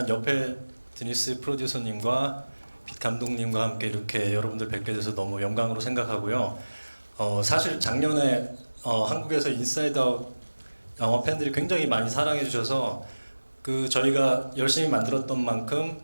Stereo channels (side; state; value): both; inverted; correlation -1.00